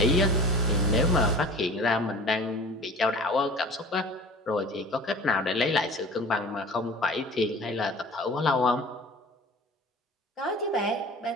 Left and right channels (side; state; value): both; normal; correlation 0.41